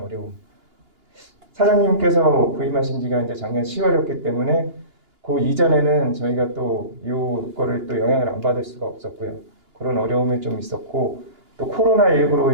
사장님께서 부임하신 지가 이제 작년 10월이었기 때문에 그 이전에는 저희가 또 이거를 또 영향을 안 받을 수가 없었고요. 그런 어려움이 좀 있었고 또 코로나19로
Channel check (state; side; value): late; left; 2.9 ms